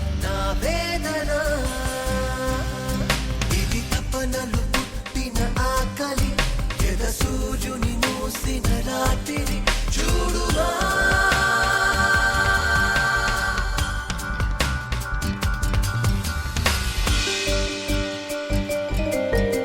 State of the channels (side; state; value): both; identical; correlation 1.00